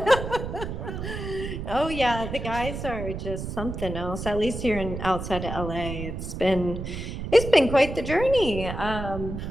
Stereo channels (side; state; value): right; noise; rumble, 6 dB below the sound